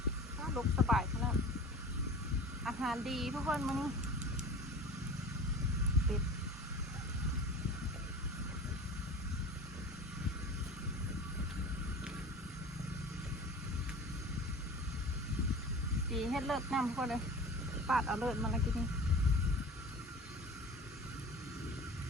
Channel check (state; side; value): normal; both; correlation 0.38